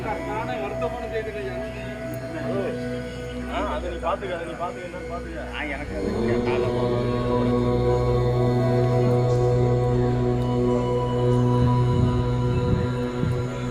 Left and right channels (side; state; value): both; identical; correlation 1.00